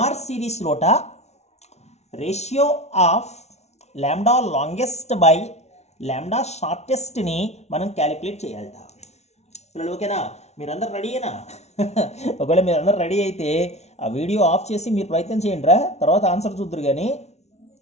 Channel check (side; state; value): right; late; 0.32 ms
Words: series లోట ratio of lambda longest by lambda షార్టెస్ట్ని మనం calculate చేయాలట పిల్లలు, ఓకేనా? మీరందరూ రెడీయేనా? ఒకవేళ మీరందరూ రెడీ అయితే ఆ వీడియో ఆఫ్ చేసి మీరు ప్రయత్నం చేయండి రా, తర్వాత ఆన్సర్ చూద్దరు కానీ